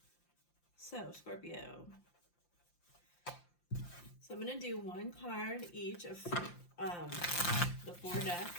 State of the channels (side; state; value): right; late; 5.8 ms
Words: So, Scorpio. So I'm going to do one card each of the 4